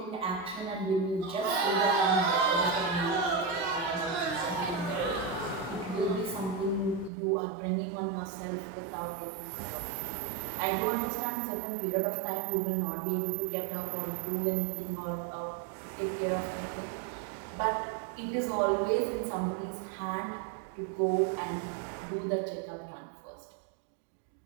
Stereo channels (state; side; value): drops out; left; at 7.1 s